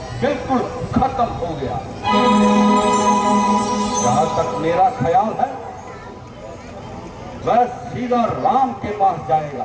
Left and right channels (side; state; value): both; identical; correlation 1.00